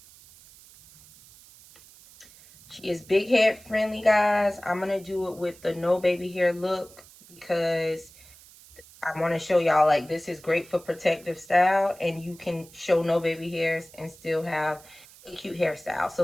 She is big head friendly, guys. I'm gonna do it with the no baby hair look because I want to show y'all, like, this is great for protective style, and you can show no baby hairs and still have a cute hairstyle. So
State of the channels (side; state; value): right; noise; hiss, 23 dB below the sound